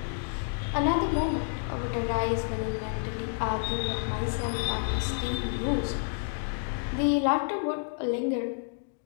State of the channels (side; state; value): right; silent; digital silence